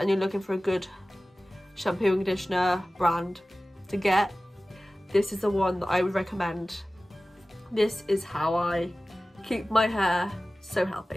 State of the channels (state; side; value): normal; both; correlation 0.97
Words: you're looking for a good shampoo and conditioner brand to get, this is the one that I would recommend. This is how I keep my hair so